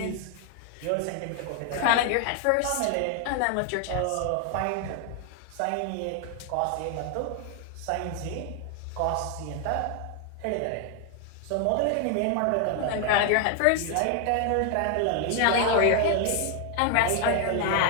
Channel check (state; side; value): different; both; correlation 0.00